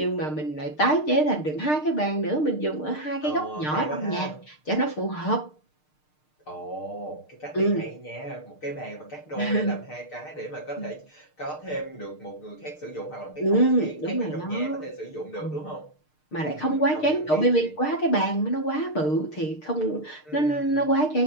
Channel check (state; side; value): late; right; 6.6 ms